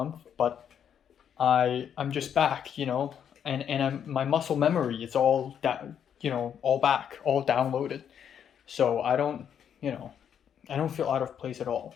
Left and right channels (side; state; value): right; quieter; 8.6 dB